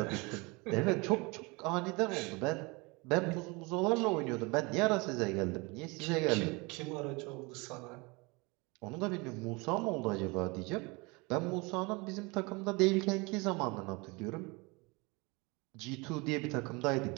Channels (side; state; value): left; quieter; 26.7 dB